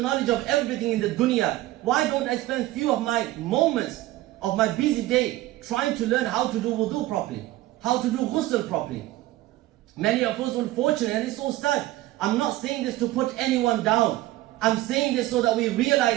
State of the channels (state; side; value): quieter; left; 16.6 dB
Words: knowledge of everything in the dunya. Why don't I spend few of my moments of my busy day trying to learn how to do wudu properly, how to do ghusl properly? Many of us, unfortunately, and it's so sad. I'm not saying this to put anyone down. I'm saying this so that we